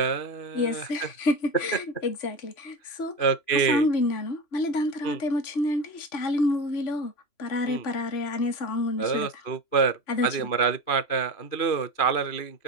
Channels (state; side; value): late; right; 3.0 ms